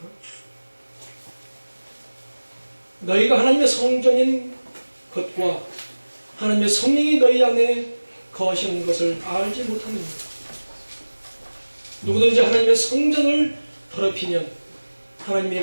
너희가 하나님의 성전인 것과 하나님의 성령이 너희 안에 거하시는 것을 알지 못하느냐. 누구든지 하나님의 성전을 더럽히면 하나님의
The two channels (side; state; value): both; inverted; correlation -1.00